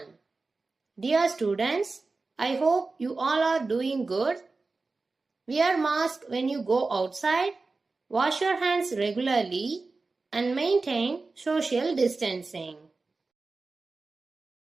Dear students, I hope you all are doing good. Wear mask when you go outside, wash your hands regularly and maintain social distancing.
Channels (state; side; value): quieter; left; 3.8 dB